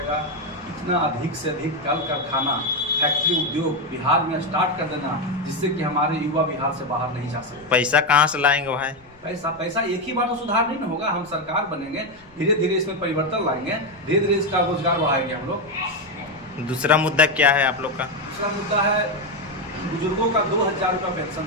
इतना अधिक से अधिक कल कारखाना, फैक्ट्री, उद्योग बिहार में स्टार्ट कर देना, जिससे कि हमारे युवा बिहार से बाहर नहीं जा सकते। पैसा कहाँ से लाएंगे भाई? पैसा एक ही बार तो सुधार नहीं ना होगा। हम सरकार बनेंगे, धीरे धीरे इसमें परिवर्तन लाएंगे, धीरे धीरे इसका रोजगार बढ़ाएंगे हम लोग। दूसरा मुद्दा क्या है आप लोग का? दूसरा मुद्दा है बुजुर्गों का 2000 रुपये पेंशन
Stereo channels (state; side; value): noise; left; rumble, 28 dB below the sound